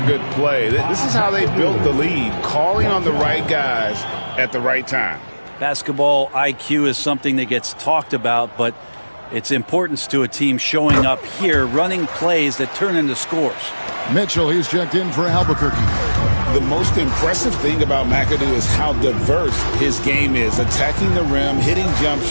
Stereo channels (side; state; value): both; inverted; correlation -1.00